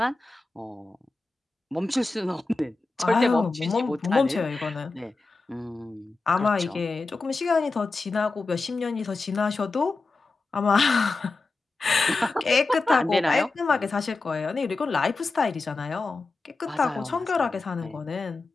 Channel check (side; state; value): right; quieter; 3.6 dB